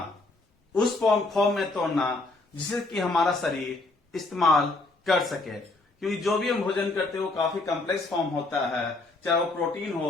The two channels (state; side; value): quieter; right; 3.2 dB